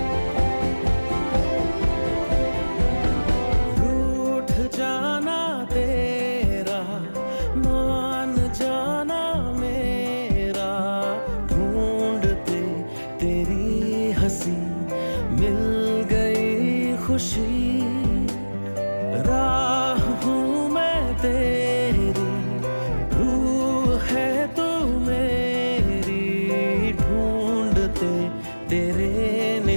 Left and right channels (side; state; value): both; inverted; correlation -1.00